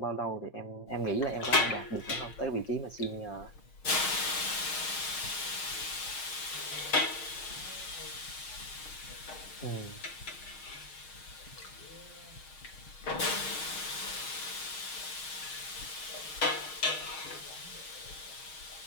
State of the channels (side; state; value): right; late; 6.4 ms